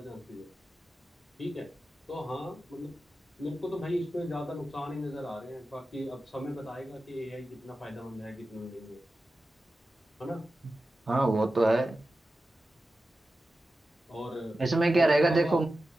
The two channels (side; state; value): both; normal; correlation 0.93